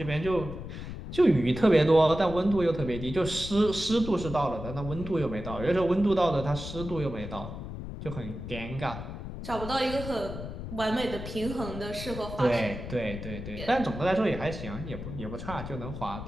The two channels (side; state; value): left; noise; rumble, 9 dB below the sound